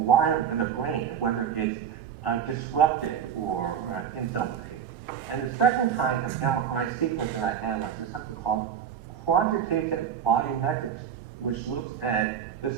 of the brain, whether it's disrupted or in some way. And the second kind of MRI sequence that I analyzed is something called quantitative volumetrics, which looks at the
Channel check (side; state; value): left; quieter; 8.4 dB